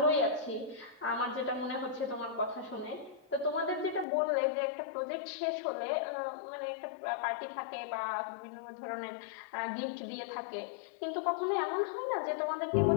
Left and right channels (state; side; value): drops out; right; at 4.0 s